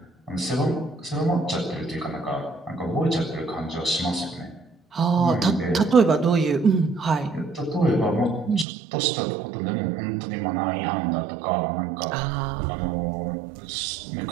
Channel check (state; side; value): drops out; left; at 8.7 s